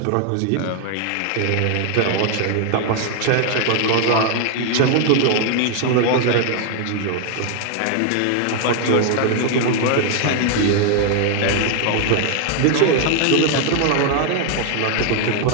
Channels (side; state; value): both; different; correlation 0.00